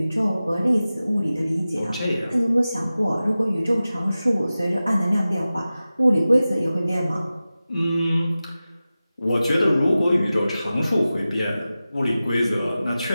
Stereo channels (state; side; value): inverted; both; correlation -0.95